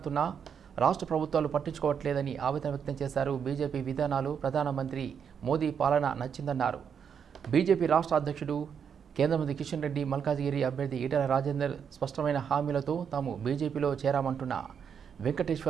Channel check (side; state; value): left; quieter; 7.3 dB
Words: రాష్ట్ర ప్రభుత్వాలు పట్టించుకోవట్లేదని ఆవేదన వ్యక్తం చేశారు. బీజేపీ విధానాలు ప్రధానమంత్రి మోదీ పాలన నచ్చిందన్నారు. బీజేపీ రాష్ట్ర అధ్యక్షుడు కేంద్ర మంత్రి కిషన్ రెడ్డి, మల్కాజిగిరి అభ్యర్థి ఈటెల రాజేందర్ స్పష్టమైన హామీలతో తాము బీజేపీలో చేరామంటున్న